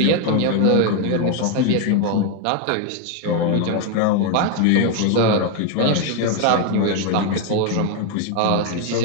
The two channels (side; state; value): both; different; correlation 0.01